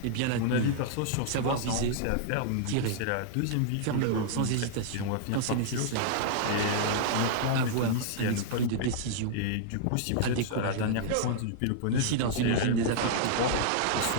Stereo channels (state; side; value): different; both; correlation -0.01